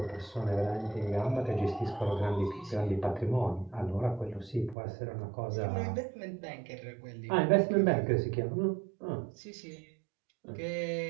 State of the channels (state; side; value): drops out; left; at 4.8 s